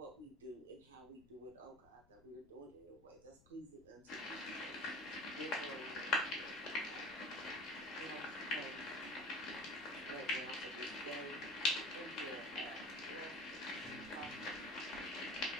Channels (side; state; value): left; noise; rumble, 25 dB below the sound